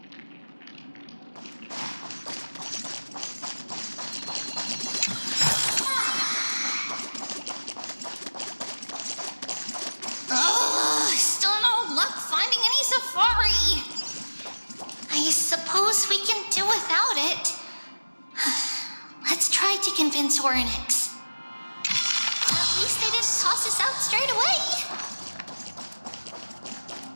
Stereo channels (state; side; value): inverted; both; correlation -1.00